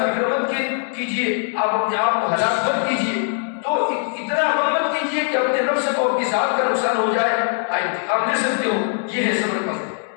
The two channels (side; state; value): right; silent; 64 dB below the other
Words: مت کیجیے، آپ اپنے آپ کو ہلاک مت کیجیے، تو اتنا غم مت کیجیے کہ اپنے نفس کو اپنی ذات کا نقصان ہو جائے، انتقام لے سکتے ہو، یہ ہے صبر کا مطلب۔